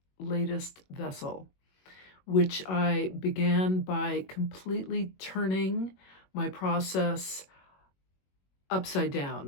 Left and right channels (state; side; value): late; right; 21 ms